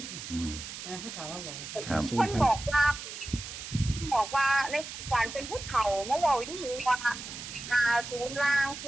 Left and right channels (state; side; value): noise; right; hiss, 10 dB below the sound